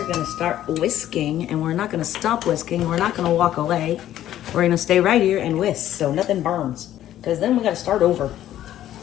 gonna start whisking, and we're not gonna stop whisking. We're not gonna walk away. We're gonna stay right here and whisk so nothing burns, because then we gotta start over.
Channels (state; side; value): quieter; right; 12.4 dB